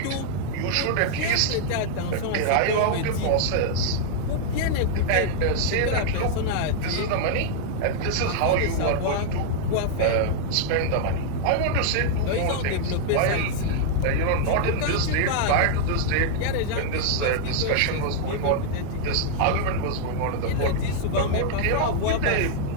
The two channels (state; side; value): different; both; correlation -0.01